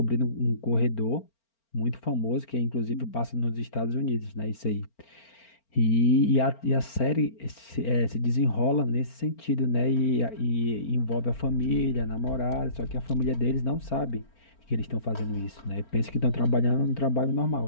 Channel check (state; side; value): late; right; 4.4 ms